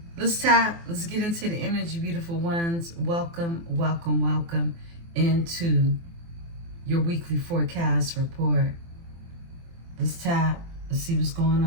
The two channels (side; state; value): left; late; 24 ms